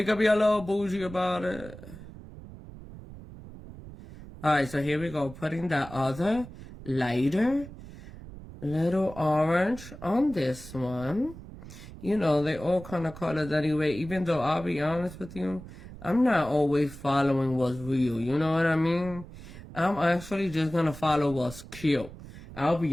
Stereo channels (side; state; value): right; noise; rumble, 15 dB below the sound